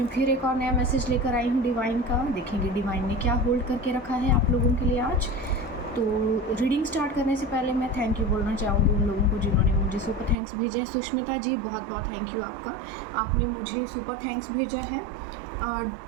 फिर एक और नया मैसेज लेकर आई हूँ डिवाइन का। देखेंगे डिवाइन ने क्या होल्ड करके रखा है आप लोगों के लिए आज। तो रीडिंग स्टार्ट करने से पहले मैं थैंक यू बोलना चाहूँगी उन लोगों को जिन्होंने मुझे सुपर थैंक्स भेजा है। सुष्मिता जी, बहुत बहुत थैंक यू आपका, आपने मुझे सुपर थैंक्स भेजा है।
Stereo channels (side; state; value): left; drops out; at 10.4 s